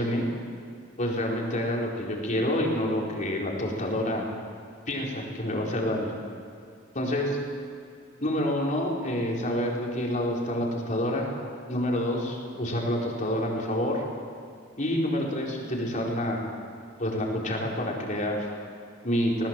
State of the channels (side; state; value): both; normal; correlation 0.46